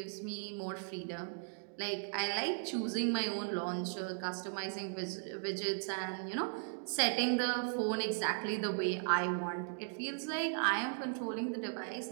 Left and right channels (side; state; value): left; silent; digital silence